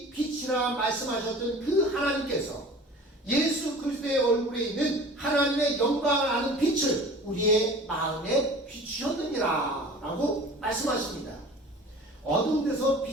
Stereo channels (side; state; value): both; normal; correlation 0.42